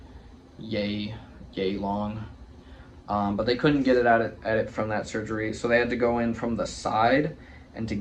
yay long. But they couldn't get it at it from that surgery, so they had to go in from the side. And to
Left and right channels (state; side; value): identical; both; correlation 1.00